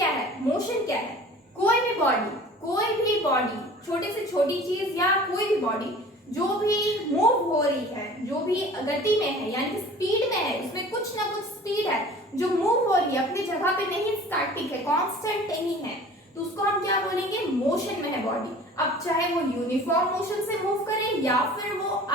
है. मोशन क्या है, कोई भी बॉडी, छोटी से छोटी चीज या कोई भी बॉडी जो भी मूव हो रही है, जो भी गति में है यानी कि स्पीड में है, इसमें कुछ ना कुछ स्पीड है, जो मूव हो रही है, अपनी जगह पे नहीं स्टैटिक है, कांस्टेंट नहीं है, तो उसको हम क्या बोलेंगे, मोशन में है बॉडी. अब चाहे वो यूनिफॉर्म मोशन से मूव करे या फिर वो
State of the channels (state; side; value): normal; both; correlation 0.44